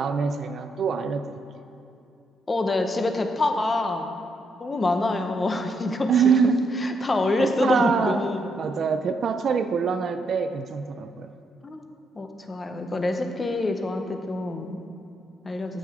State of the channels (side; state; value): both; normal; correlation 0.77